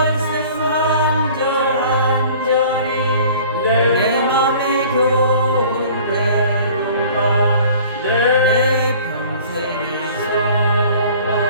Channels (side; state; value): both; inverted; correlation -0.49